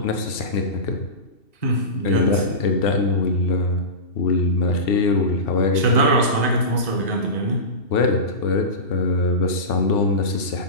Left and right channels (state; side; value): late; right; 2.7 ms